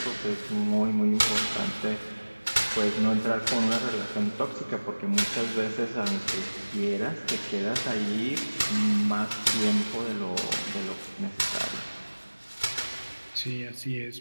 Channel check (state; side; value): inverted; both; correlation -1.00